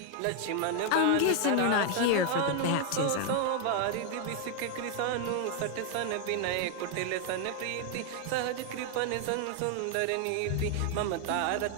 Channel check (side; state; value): both; different; correlation 0.01